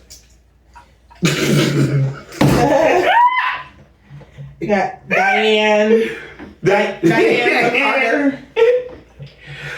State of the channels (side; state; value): both; identical; correlation 1.00